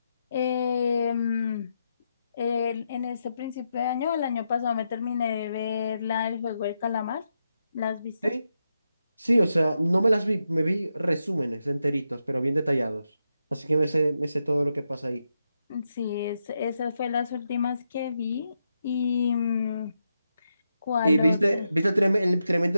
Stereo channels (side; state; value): both; inverted; correlation -0.85